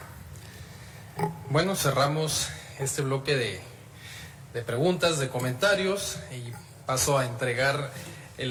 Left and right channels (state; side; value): identical; both; correlation 1.00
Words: Bueno, cerramos este bloque de preguntas, de comentarios, y paso a entregar